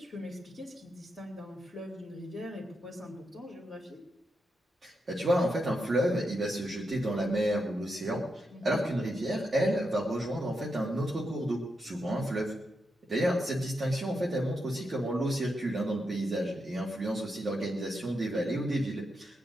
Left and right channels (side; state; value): both; normal; correlation 0.85